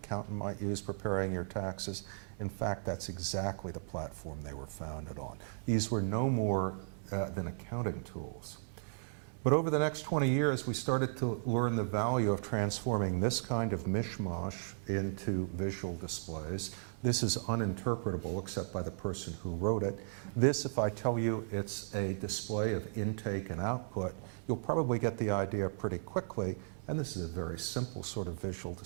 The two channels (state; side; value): silent; left; 54 dB below the other